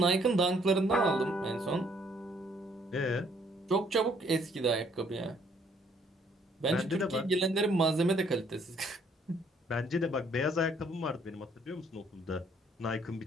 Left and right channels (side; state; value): both; normal; correlation 0.65